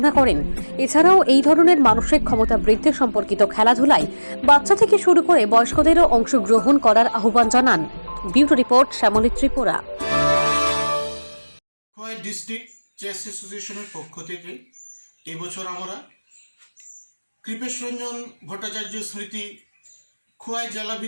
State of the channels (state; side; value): inverted; both; correlation -1.00